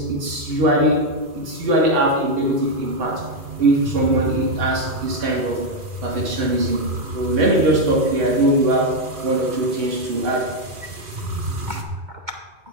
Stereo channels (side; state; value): left; late; 2.4 ms